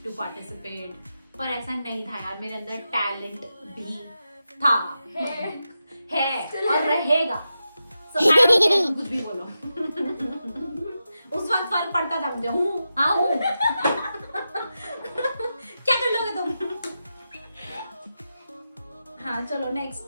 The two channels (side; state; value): both; inverted; correlation -0.89